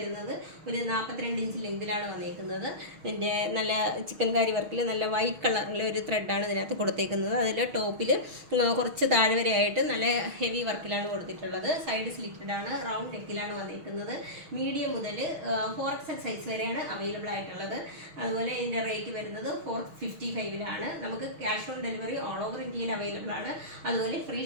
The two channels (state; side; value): late; left; 6.4 ms